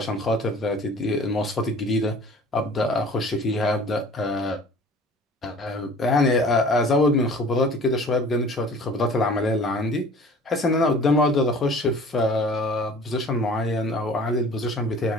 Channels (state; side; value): normal; both; correlation 0.47